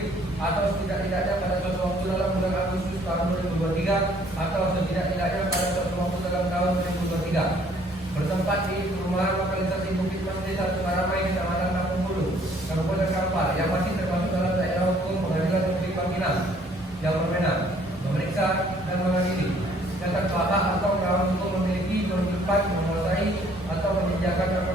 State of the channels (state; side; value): normal; both; correlation 0.61